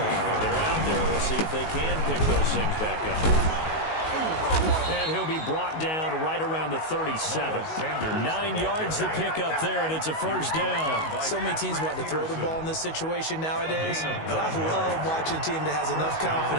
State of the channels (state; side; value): late; right; 19 ms